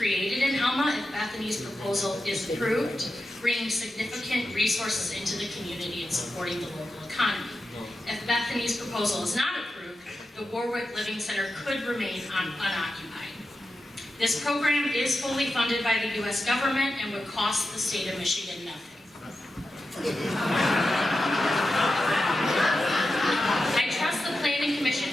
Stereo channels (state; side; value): normal; both; correlation 0.91